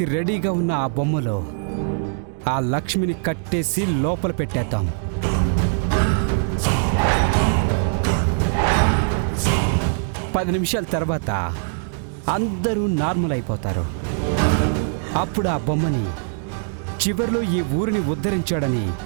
రెడీగా ఉన్న ఆ బొమ్మలో ఆ లక్ష్మిని కట్టేసి లోపల పెట్టేద్దాం. పది నిమిషాల తర్వాత అందరూ నార్మల్ అయిపోతారు. అప్పుడు ఆ బొమ్మని చివర్లో ఈ ఊరిని ఉద్ధరించాడని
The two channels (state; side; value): silent; left; digital silence